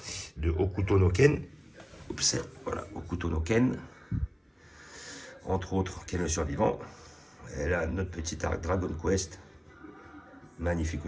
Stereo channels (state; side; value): identical; both; correlation 1.00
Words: de Hokuto no Ken. Oups, voilà, Hokuto no Ken. Entre autres, Ken le survivant. Et là, notre petit arc Dragon Quest. Magnifique